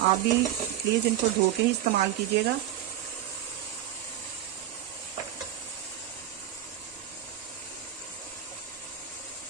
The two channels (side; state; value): left; quieter; 11.6 dB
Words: आप भी प्लीज इनको धो के ही इस्तेमाल कीजिएगा।